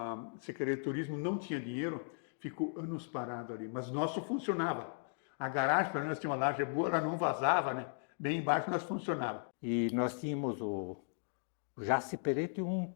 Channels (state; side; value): silent; right; digital silence